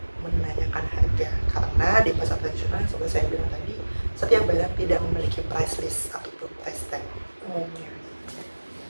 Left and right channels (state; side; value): inverted; both; correlation -1.00